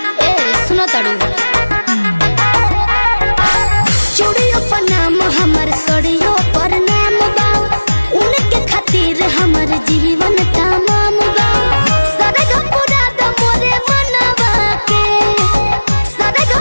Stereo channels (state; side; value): inverted; both; correlation -1.00